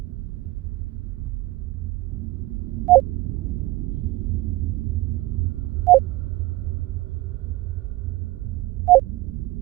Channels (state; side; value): quieter; left; 18.9 dB